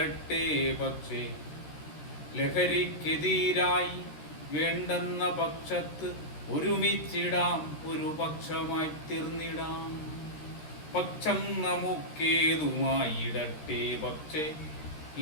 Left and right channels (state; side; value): late; right; 13 ms